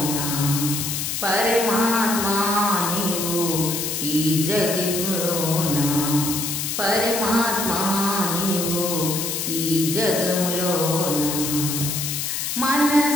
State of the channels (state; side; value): noise; left; hiss, 2 dB below the sound